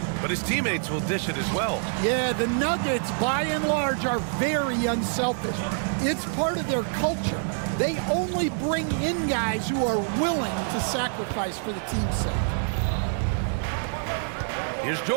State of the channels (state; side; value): silent; left; 61 dB below the other